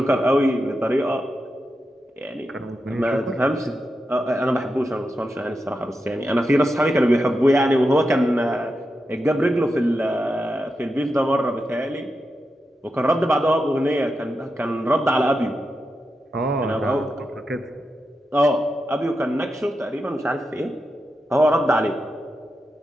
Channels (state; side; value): normal; both; correlation 0.88